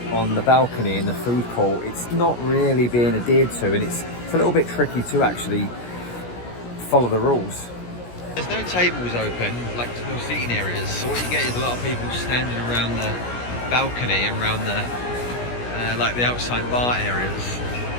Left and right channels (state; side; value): late; right; 17 ms